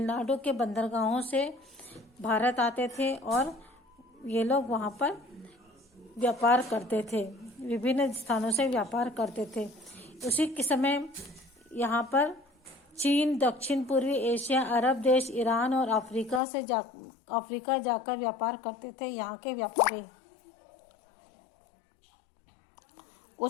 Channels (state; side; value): drops out; right; at 16.4 s